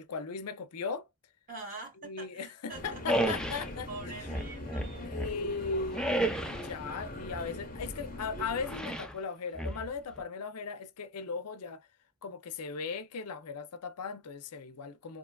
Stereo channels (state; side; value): normal; both; correlation 0.20